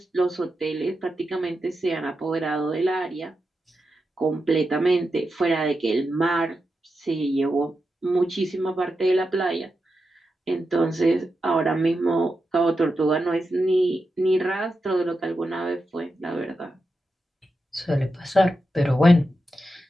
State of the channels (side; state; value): both; normal; correlation 0.88